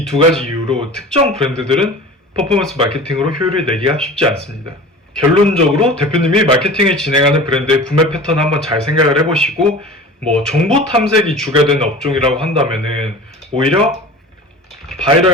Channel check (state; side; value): normal; both; correlation 0.37